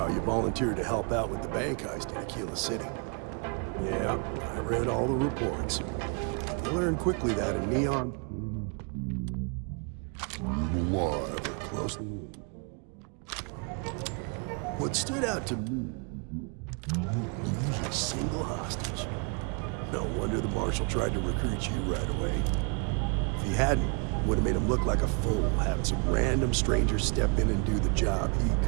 you volunteered to help out with the bank heist in Aquila City. Yeah, I read all the reports. I learned quickly that in Neon, alive or close. What stood out to me, you didn't lose a single hostage. No wonder the Marshal tried to recruit you right away. If he hadn't, would have made him look like a fool, having some random stranger step in and do the job he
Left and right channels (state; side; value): quieter; left; 35.6 dB